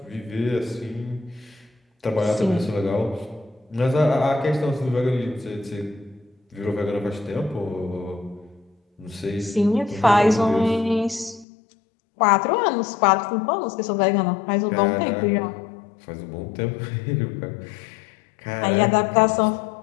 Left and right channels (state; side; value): drops out; right; at 11.5 s